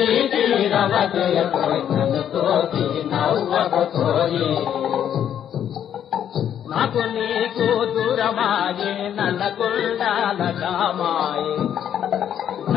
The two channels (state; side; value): quieter; right; 9.7 dB